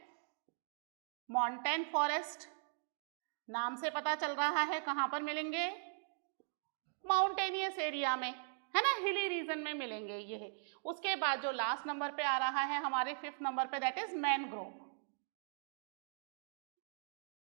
माउंटेन फॉरेस्ट। नाम से पता चल रहा है कहां पर मिलेंगे, माउंटेनियस एरिया में, है ना, हिली रीजन में मिलेंगे ये। उसके बाद जो लास्ट नंबर पे आ रहा है हमारे 5th नंबर पे that is mangrove,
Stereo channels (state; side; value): silent; left; digital silence